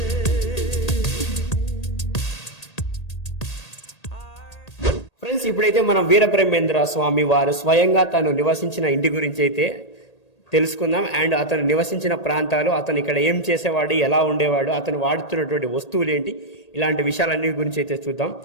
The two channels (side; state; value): right; late; 1.8 ms